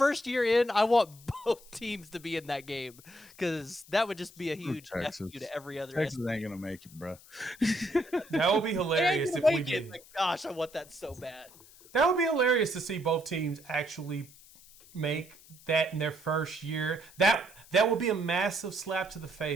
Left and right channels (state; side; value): noise; left; hiss, 23 dB below the sound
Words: year in, I want both teams to be in that game, because that would just be a huge F you to every other. Texas ain't gonna make it, bro. That would be hilarious if we did. Like, gosh, I want that so bad. That would be hilarious to see both teams actually make that in their first year. That would be a massive slap to the